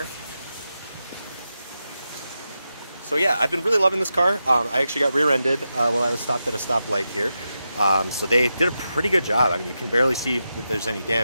So yeah, I've been really loving this car. I actually got rear-ended while I was stopped at a stoplight here. So they did a pretty good job. I mean, you can barely see that there's any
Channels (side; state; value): both; inverted; correlation -0.89